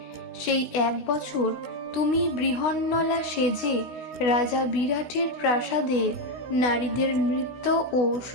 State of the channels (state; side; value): late; right; 16 ms